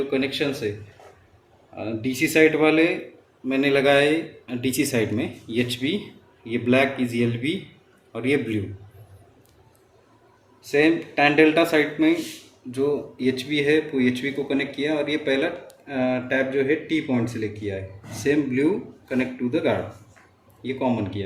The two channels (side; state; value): both; identical; correlation 1.00